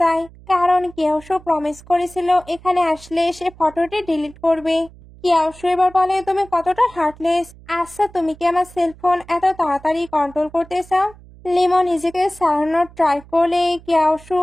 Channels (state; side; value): noise; right; hum, 22 dB below the sound